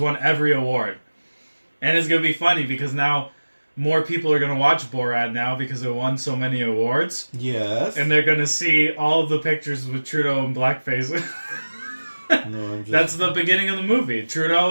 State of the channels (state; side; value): inverted; both; correlation -1.00